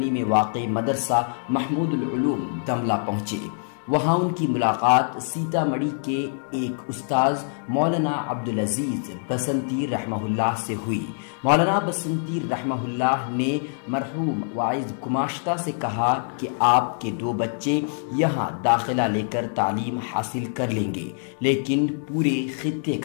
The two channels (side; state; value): right; silent; digital silence